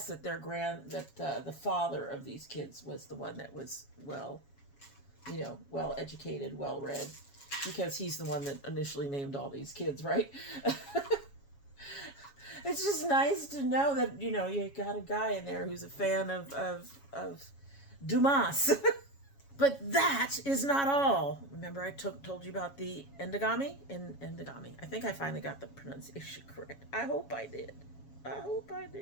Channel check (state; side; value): late; right; 7.2 ms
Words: that the father of these kids was the one that was well-educated, well-read, because he's the one that initially named all these kids, right? It's just nice to know that, you got a guy in there who's a fan of Dumas. But that is not all. Remember I told you about the endogamy? Endogamy. I think I finally got the pronunciation correct. I hope I did.